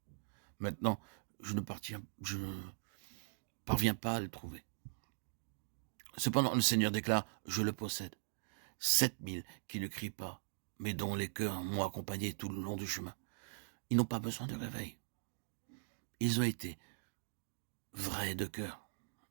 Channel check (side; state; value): left; silent; digital silence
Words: Maintenant, je ne parviens pas à le trouver. Cependant, le Seigneur déclare, je le possède. 7000 qui ne crient pas, mais dont les cœurs m'ont accompagné tout le long du chemin. Ils n'ont pas besoin de réveil. Ils ont été vrais de cœur,